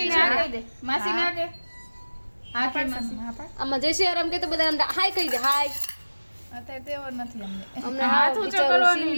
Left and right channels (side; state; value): both; inverted; correlation -1.00